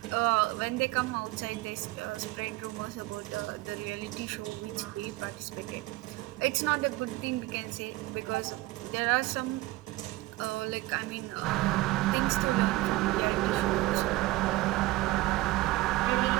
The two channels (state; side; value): quieter; left; 19.1 dB